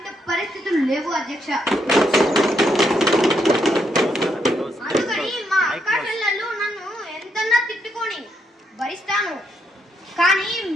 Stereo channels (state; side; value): normal; both; correlation 0.77